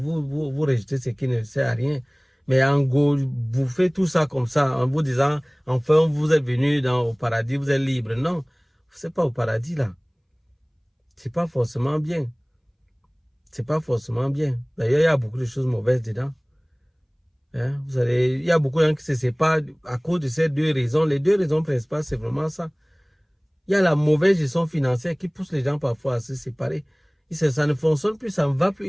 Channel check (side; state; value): both; identical; correlation 1.00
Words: rejetez ce qui ne sert à rien. Mais en gros, vous faites tout ça comme ça, en vous disant, enfin, vous êtes venu au paradis, vous êtes libre. Non, c'est pas au paradis là. C'est pas forcément bien. C'est pas forcément bien. D'ailleurs, il y a beaucoup de choses mauvaises dedans. Hein? Il y a beaucoup de gens qui se séparent à cause de ces deux raisons. Les deux raisons principales, c'est vraiment ça. Il y a la mauvaise gestion financière qui pousse les gens parfois à se séparer. Ça ne fonctionne plus, ça ne va plus,